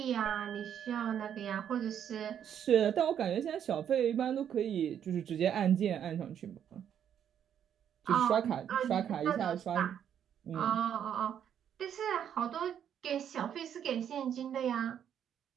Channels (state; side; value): quieter; left; 9.1 dB